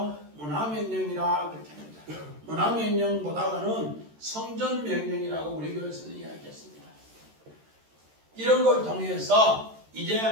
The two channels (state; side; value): late; left; 13 ms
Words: 문화명령이라 그렇게 합니다. 문화명령보다는 성전명령이라고 우리 교회에서는 이야기했습니다. 이런 걸 통해서 이제